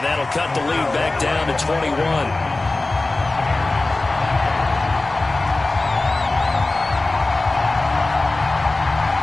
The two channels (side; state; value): right; quieter; 3.1 dB